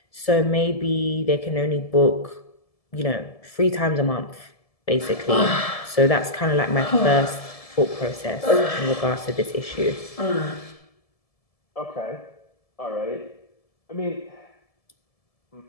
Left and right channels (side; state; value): right; late; 1.7 ms